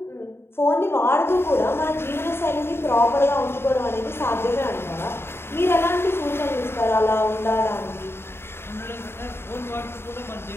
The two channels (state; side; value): late; right; 0.11 ms